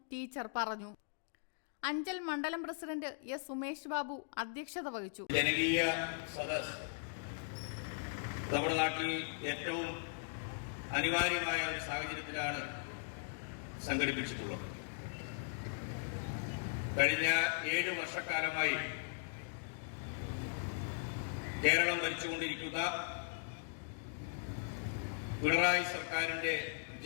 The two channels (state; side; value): silent; right; digital silence